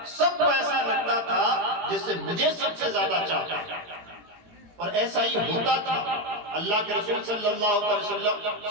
سب کو ایسا لگتا تھا جسے مجھے سب سے زیادہ چاہتا ہے، اور ایسا ہی ہوتا تھا۔ اللہ کے رسول صلی اللہ علیہ وسلم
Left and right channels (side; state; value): left; late; 18 ms